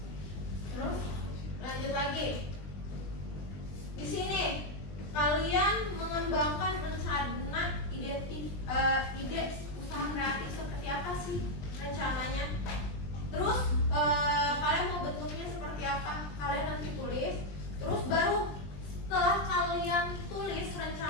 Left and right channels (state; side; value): late; right; 20 ms